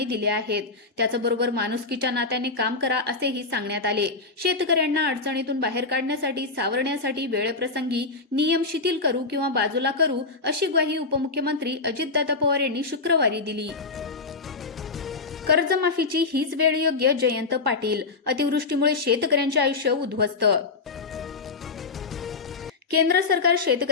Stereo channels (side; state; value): right; quieter; 4.0 dB